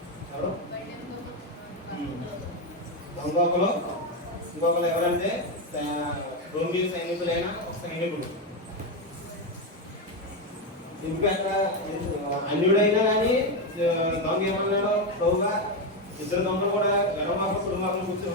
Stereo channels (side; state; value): both; normal; correlation 0.09